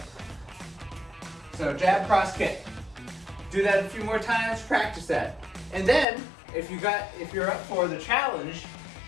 So jab, cross, kick. Do that a few more times, practice that. And then, if you're up for the challenge,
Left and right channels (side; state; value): right; drops out; at 6.1 s